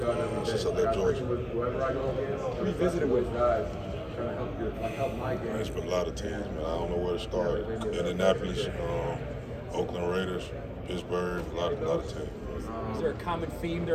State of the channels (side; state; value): both; identical; correlation 1.00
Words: Georgia. Who you visited with? It's been a lot of teams, man. I don't know where to start. Indianapolis, Oakland Raiders, Pittsburgh, a lot of teams. Is there a common theme